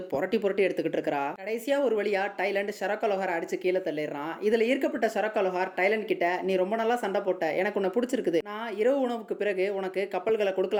புரட்டி புரட்டி எடுத்துக்கிட்டு இருக்கா. கடைசியா ஒரு வழியா டைலண்ட் ஷரக்கா லோஹார் அடிச்சு கீழே தள்ளிடுறான். இதுல ஈர்க்கப்பட்ட ஷரக்கா லோஹார் டைலண்ட் கிட்ட, நீ ரொம்ப நல்லா சண்டை போட்ட, எனக்கு உன்னை பிடிச்சிருக்குது, நான் இரவு உணவுக்கு பிறகு உனக்கு கப்பல்களை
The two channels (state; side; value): identical; both; correlation 1.00